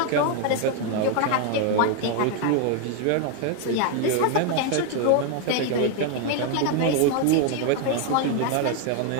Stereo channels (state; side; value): different; both; correlation 0.01